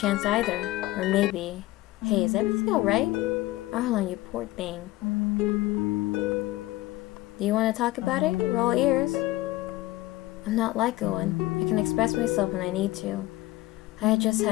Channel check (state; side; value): quieter; right; 18.1 dB